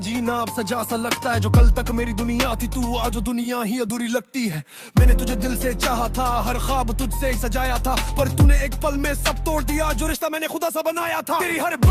अब सजा सा लगता है। जो कल तक मेरी दुनिया थी तू आज दुनिया ही अधूरी लगती है। मैंने तुझे दिल से चाहा था, हर ख्वाब तुझसे ही सजाया था, पर तूने एक पल में सब तोड़ दिया जो रिश्ता मैंने खुदा सा बनाया था। तेरी हर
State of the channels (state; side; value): identical; both; correlation 1.00